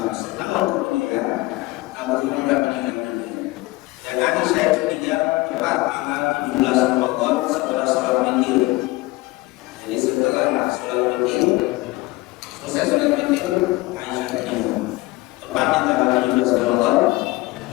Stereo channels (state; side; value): quieter; right; 21.2 dB